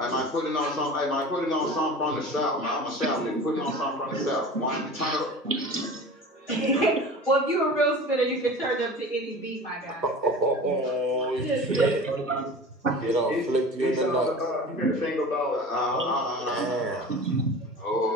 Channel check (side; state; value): both; normal; correlation 0.37